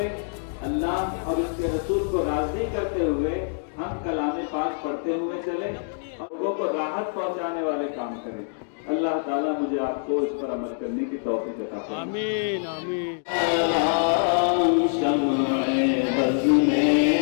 اللہ اور اس کے رسول کو راضی کرتے ہوئے ہم کلام پاک پڑھتے ہوئے چلیں اور لوگوں کو راحت پہنچانے والے کام کریں. اللہ تعالیٰ مجھے آپ کو اس پر عمل کرنے کی توفیق عطا فرمائے. آمین آمین. شمع بز میں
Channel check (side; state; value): right; silent; digital silence